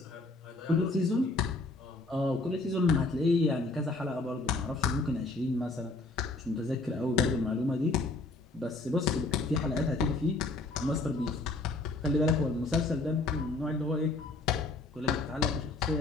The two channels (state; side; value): quieter; right; 3.3 dB